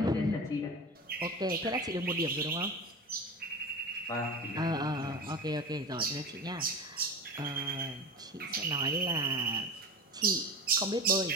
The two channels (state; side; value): normal; both; correlation 0.29